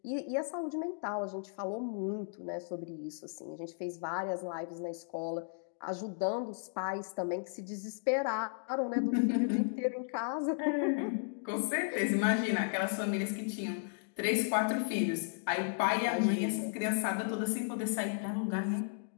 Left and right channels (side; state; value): right; silent; digital silence